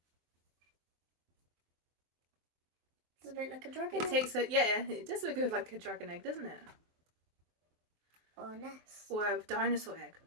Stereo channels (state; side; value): late; left; 23 ms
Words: Does it look like a dragon egg? It does look like a dragon egg, doesn't it? Or a nest. Or a dinosaur egg.